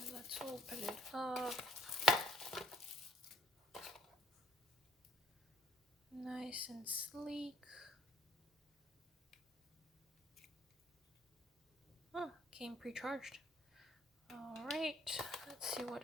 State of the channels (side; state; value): both; normal; correlation 0.62